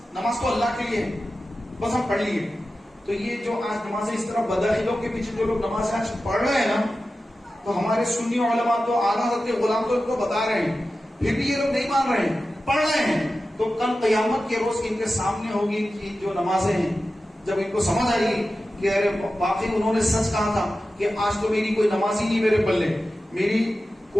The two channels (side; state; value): both; normal; correlation 0.93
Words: نماز تو اللہ کے لیے بس ہم پڑھ لیے. تو یہ جو آج نمازیں اس طرح بدعقیدوں کے پیچھے جو لوگ نماز آج پڑھ رہے ہیں نا، تو ہمارے سنی علماء تو اعلیٰ حضرت کے غلام تو ان کو بتا رہے ہیں، پھر بھی یہ لوگ نہیں مان رہے ہیں، پڑھ رہے ہیں. تو کل قیامت کے روز ان کے سامنے ہوگی کہ جو نمازیں ہیں، جب ان کو سمجھ آئے گی کہ ارے واقعی انہوں نے سچ کہا تھا کہ آج تو میری کوئی نماز ہی نہیں میرے پلے، میری